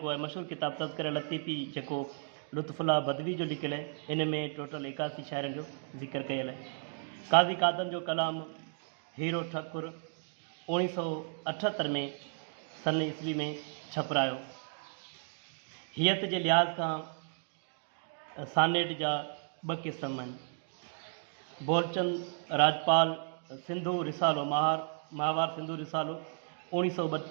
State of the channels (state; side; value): silent; left; digital silence